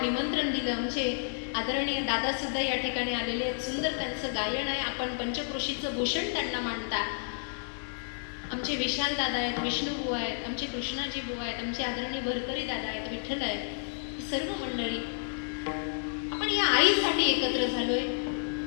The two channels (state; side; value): silent; right; 57 dB below the other